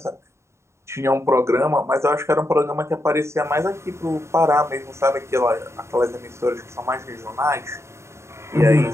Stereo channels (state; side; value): late; left; 0.13 ms